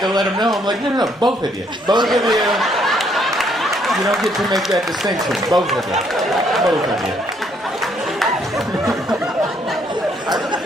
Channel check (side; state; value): both; normal; correlation 0.69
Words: let them know. I'm like, no, both of you. Both of you. You don't get to make that distinction. Both of you.